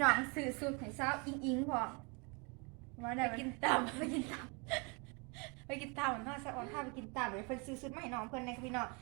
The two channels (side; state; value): left; quieter; 32.0 dB